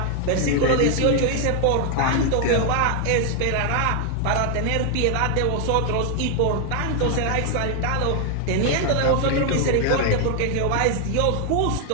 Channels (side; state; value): both; different; correlation 0.00